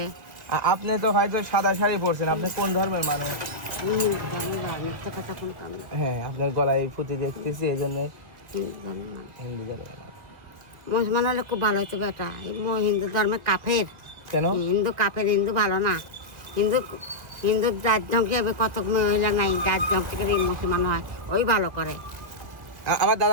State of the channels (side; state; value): left; late; 1.8 ms